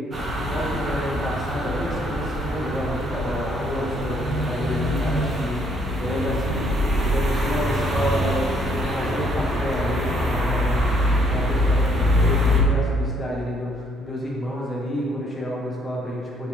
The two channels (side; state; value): both; normal; correlation 0.67